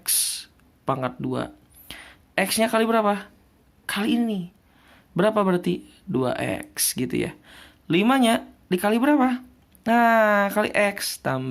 pangkat 2. X-nya kali berapa? Kali ini. Berapa berarti? 2X gitu ya. 5-nya dikali berapa? Nah, kali X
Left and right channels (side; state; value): both; identical; correlation 1.00